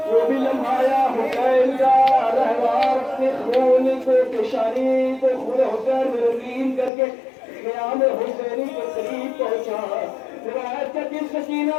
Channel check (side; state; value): right; drops out; at 6.9 s